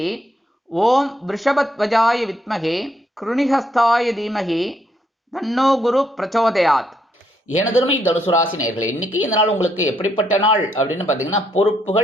ஓம் விருஷபத்வஜாய வித்மகே கிருணிஹஸ்தாய தீமகி தன்னோ குரு பிரச்சோதயாத். எனதருமை தனுசு ராசி நேயர்களே, இன்னைக்கு இந்த நாள் உங்களுக்கு எப்படிப்பட்ட நாள் அப்படின்னு பார்த்தீங்கன்னா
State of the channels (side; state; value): both; normal; correlation 0.74